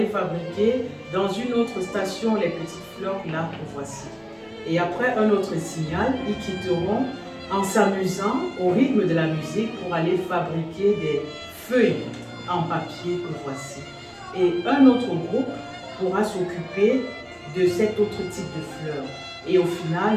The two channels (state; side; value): identical; both; correlation 1.00